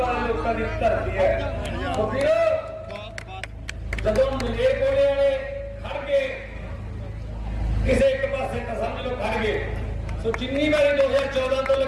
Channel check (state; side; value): identical; both; correlation 1.00